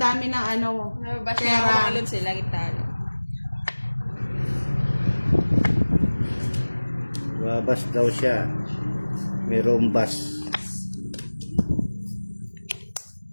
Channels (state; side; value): inverted; both; correlation -1.00